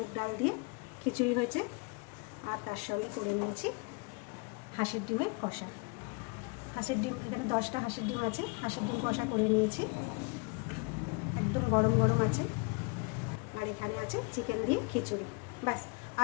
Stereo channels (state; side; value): quieter; right; 31.3 dB